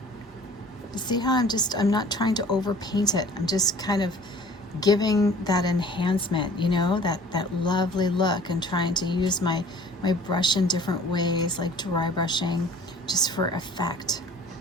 You see how I'm not trying to overpaint it. I'm just kind of giving that enhancement, you know, that lovely look, and trying to use my brush in different ways, like dry brushing, just for effect.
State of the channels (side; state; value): both; normal; correlation 0.49